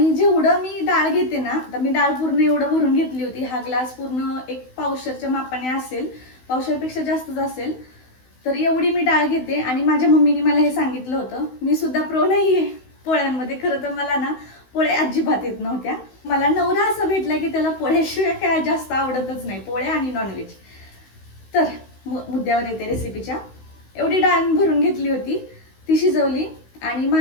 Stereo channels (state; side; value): late; right; 16 ms